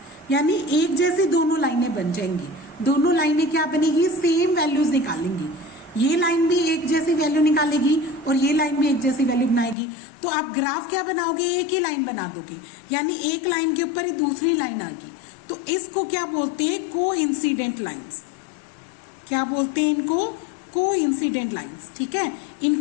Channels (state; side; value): drops out; right; at 9.8 s